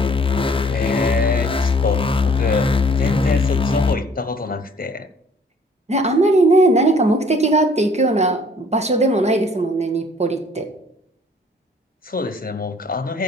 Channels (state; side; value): normal; both; correlation 0.57